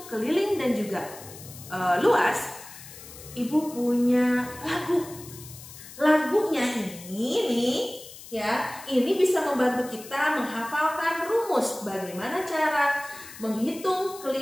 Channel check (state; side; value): noise; left; hiss, 16 dB below the sound